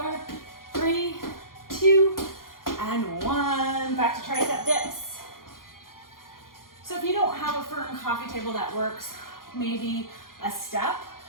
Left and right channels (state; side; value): late; right; 0.91 ms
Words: 3, 2, and 1. Back to tricep dips. So if you don't have a firm coffee table that works, maybe a step